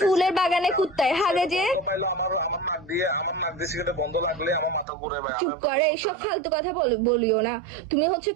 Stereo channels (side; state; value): left; drops out; at 4.9 s